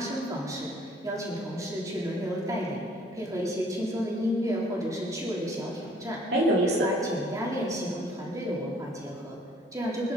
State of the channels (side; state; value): both; normal; correlation 0.58